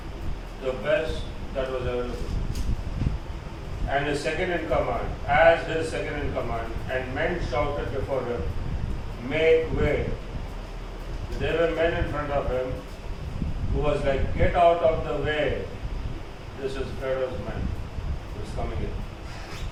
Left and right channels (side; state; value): both; identical; correlation 1.00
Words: the best that was available. And his second in command, as his second in command, and men shouted before him, make way. The there were men in front of him who was like, get out of the way. This is Pharaoh's man who is coming in.